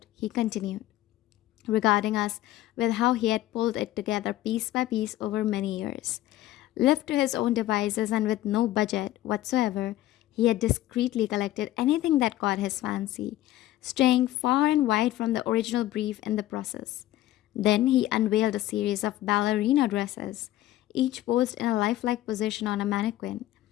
he continued, regarding us with how he had pulled it together piece by piece over many years. Left to his own devices and with no budget whatsoever, he had discreetly collected anything that caught his fancy, straying far and wide from the original brief in the process. Then he unveiled a series of ballerina dresses, each posed in a lifelike position on a mannequin,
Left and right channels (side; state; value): right; quieter; 15.0 dB